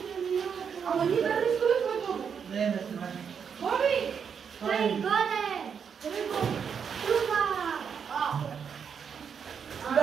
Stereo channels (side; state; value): left; quieter; 7.0 dB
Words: Ама ние да не изгубихме Боби! не сме. Боби! Той годе! Къде е Боби? Трупа!